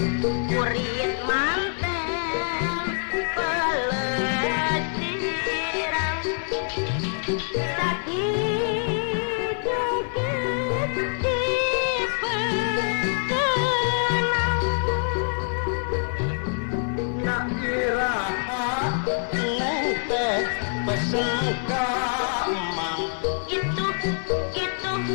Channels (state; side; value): silent; right; digital silence